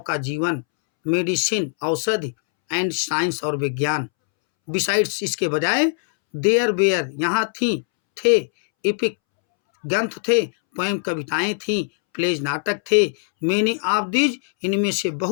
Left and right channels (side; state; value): right; silent; 65 dB below the other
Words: का जीवन, मेडिसिन औषधि एंड साइंस और विज्ञान। बिसाइड्स इसके बजाय देयर बेयर यहाँ थी थे, इपिक ग्रंथ थे, पोएम कविताएं थीं, प्लेज नाटक थे, मेनी ऑफ दीज इनमें से